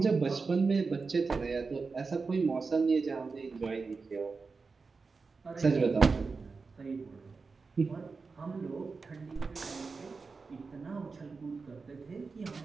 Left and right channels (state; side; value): quieter; left; 4.4 dB